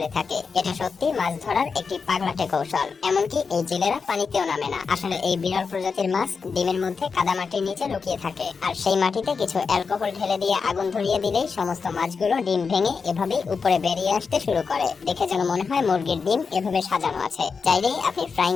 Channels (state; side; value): quieter; right; 5.2 dB